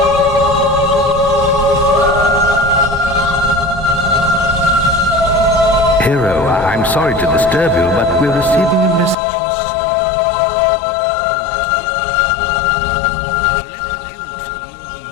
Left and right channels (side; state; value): right; drops out; at 9.2 s